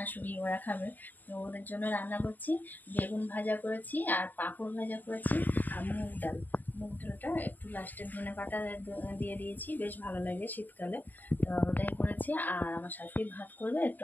ওরা খাবে। তো ওদের জন্য রান্না করছি। বেগুন ভাজা করেছি আর পাঁপড় ভাজা করেছি আর মুগ ডাল। মুগ ডালটা একটু লাস্টে ধনে পাতা দিয়ে দিয়েছি, বেশ ভালো লাগে শীতকালে। তো ওটাই করেছি। আর আমার শাশুড়ি ভাত করবে,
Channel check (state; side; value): late; right; 0.087 ms